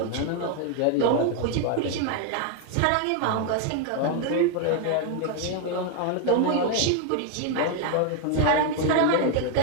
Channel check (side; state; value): both; different; correlation 0.01